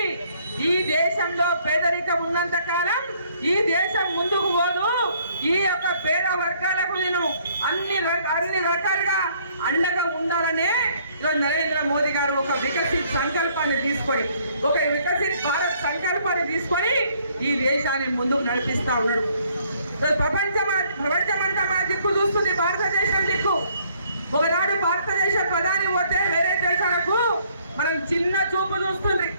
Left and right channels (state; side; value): inverted; both; correlation -0.64